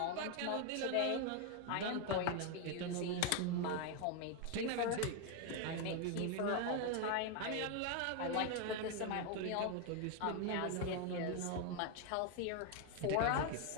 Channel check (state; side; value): different; both; correlation 0.01